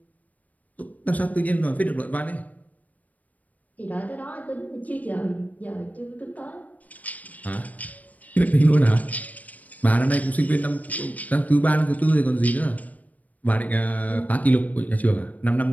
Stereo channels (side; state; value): right; late; 0.074 ms